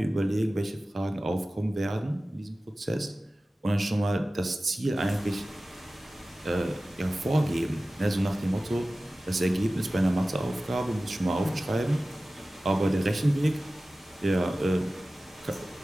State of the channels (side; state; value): both; normal; correlation 0.96